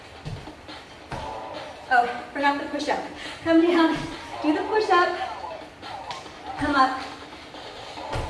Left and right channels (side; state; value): both; identical; correlation 1.00